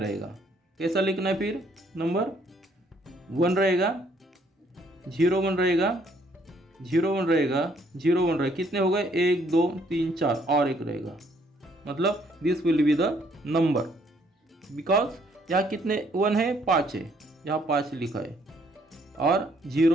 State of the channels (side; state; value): both; normal; correlation 0.66